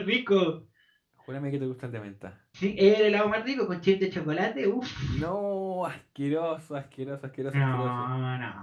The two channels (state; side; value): identical; both; correlation 1.00